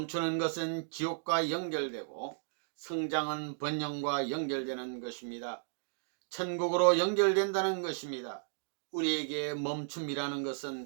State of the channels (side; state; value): left; silent; digital silence